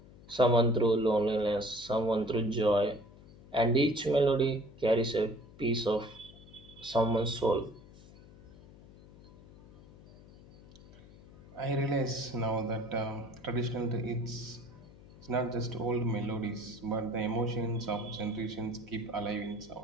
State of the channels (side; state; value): left; noise; hum, 21 dB below the sound